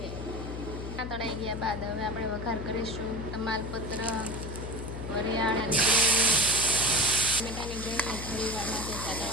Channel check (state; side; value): noise; left; hum, 7 dB below the sound